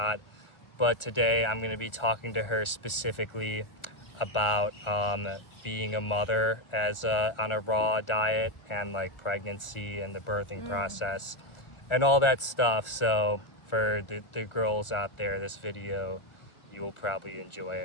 But today I'm going to be talking to her specifically about being a mother on a raw diet and like pregnancy and the birthing process and all that stuff. So for the girls out there, this video, you will probably enjoy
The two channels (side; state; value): right; late; 1.4 ms